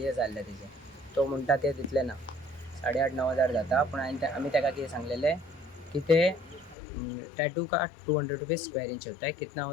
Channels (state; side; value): drops out; right; at 6.8 s